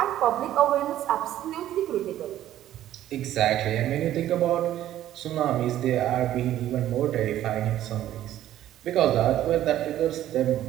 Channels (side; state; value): left; quieter; 12.7 dB